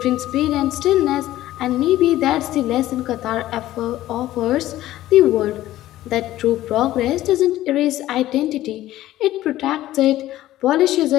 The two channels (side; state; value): right; quieter; 14.7 dB